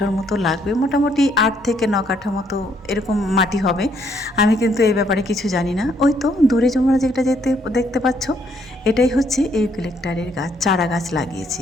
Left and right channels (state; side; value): normal; both; correlation 0.69